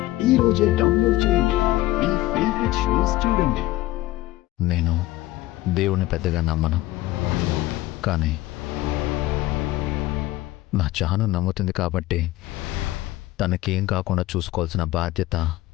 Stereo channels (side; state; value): right; quieter; 17.3 dB